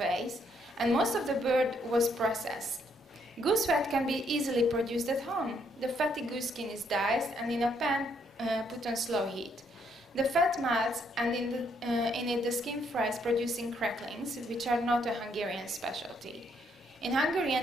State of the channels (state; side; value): normal; both; correlation 0.71